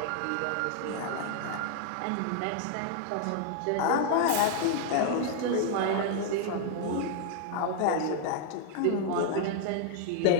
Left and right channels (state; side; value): different; both; correlation 0.00